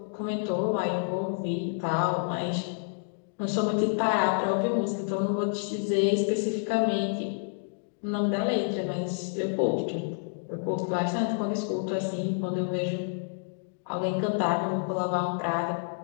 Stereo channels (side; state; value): right; silent; digital silence